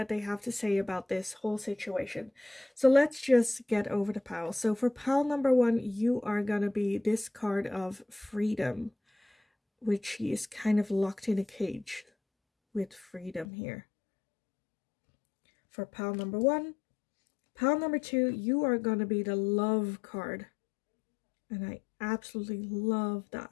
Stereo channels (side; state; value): right; drops out; at 13.5 s